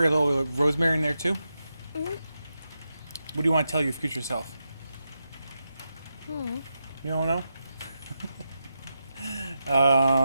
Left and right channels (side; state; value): both; inverted; correlation -0.88